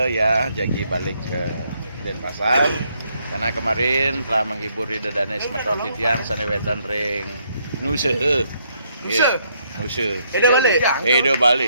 ya, jadi balik ke Denpasar karena kemarin telah menghibur Rida Danes Meton Titiang sana wetan ring Nusa. Nusa. Edo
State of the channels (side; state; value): both; inverted; correlation -0.72